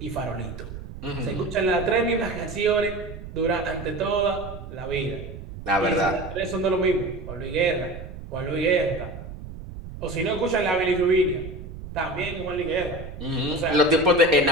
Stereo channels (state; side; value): noise; right; rumble, 11 dB below the sound